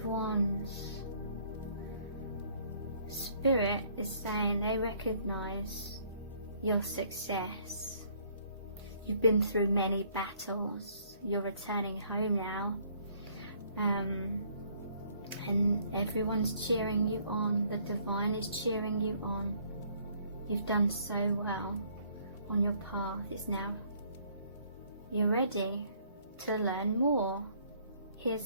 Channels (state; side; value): inverted; both; correlation -0.63